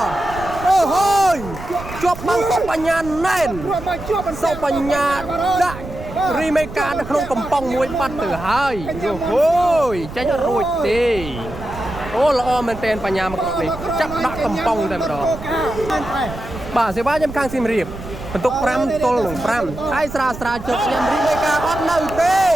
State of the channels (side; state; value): right; noise; rumble, 12 dB below the sound